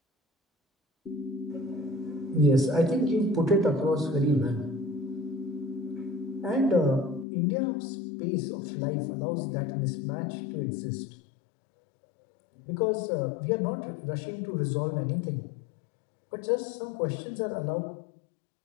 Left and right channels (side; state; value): right; drops out; at 7.2 s